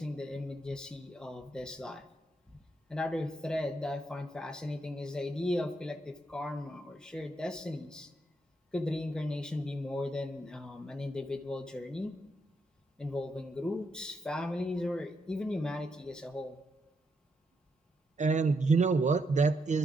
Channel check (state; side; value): normal; both; correlation 0.80